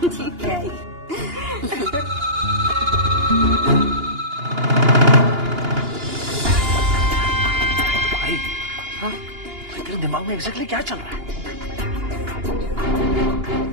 ठीक है। भाई, हाँ? तेरे दिमाग में एग्जैक्टली क्या चल रहा है? तू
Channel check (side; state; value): left; late; 2.8 ms